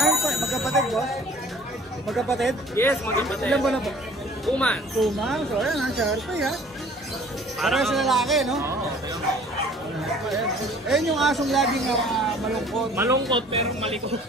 magkapatid boss? Magkapatid? Yes, magkapatid. Ilan ba na po? 2 months. 2 months. So ayan ha, Sharpei ha. Parehas na lalaki no? Oo. Ayan yung asong laging malungkot. Malungkot pero malikot.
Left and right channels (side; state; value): both; normal; correlation 0.51